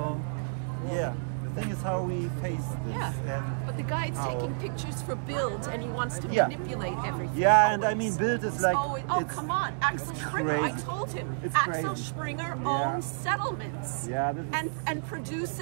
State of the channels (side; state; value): left; silent; digital silence